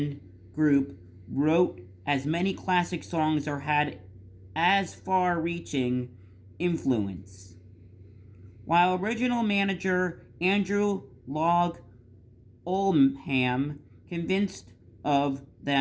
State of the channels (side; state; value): both; identical; correlation 1.00